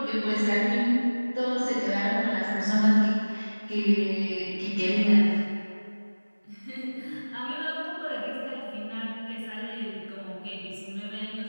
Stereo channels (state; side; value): inverted; both; correlation -1.00